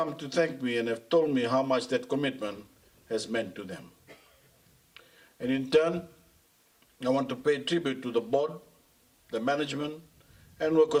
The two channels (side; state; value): both; identical; correlation 1.00